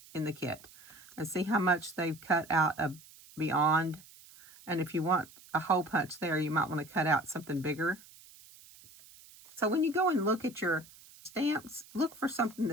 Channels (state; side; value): noise; right; hiss, 22 dB below the sound